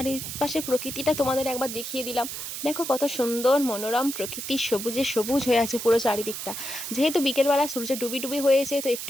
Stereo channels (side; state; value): right; noise; hiss, 7 dB below the sound